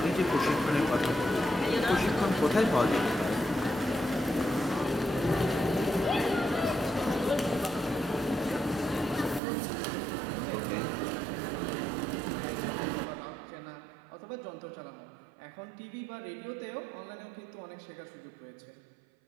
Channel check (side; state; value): left; drops out; at 9.4 s